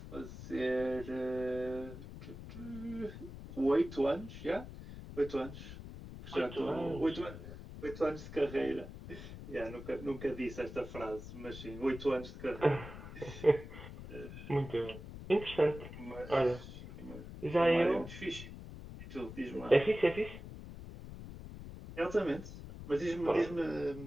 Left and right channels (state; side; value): noise; left; rumble, 12 dB below the sound